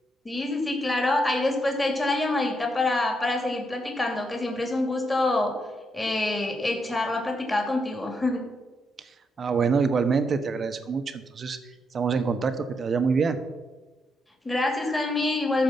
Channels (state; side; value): normal; both; correlation 0.79